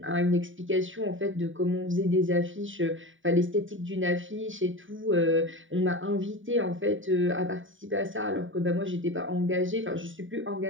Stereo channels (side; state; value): left; late; 0.57 ms